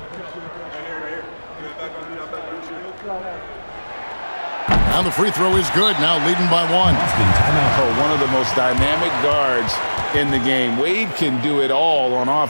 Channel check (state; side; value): inverted; both; correlation -1.00